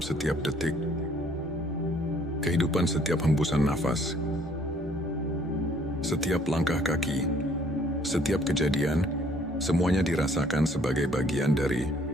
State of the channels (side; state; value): both; normal; correlation 0.61